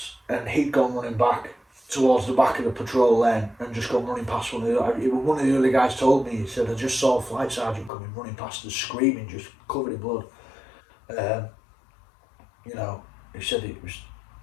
And he'd gone running back towards the back of the patrol lane and just gone running past one of the other guys told me, he said, I just saw a flight sergeant coming running past us screaming, just covered in blood. You know, he said it was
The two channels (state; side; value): drops out; right; at 7.9 s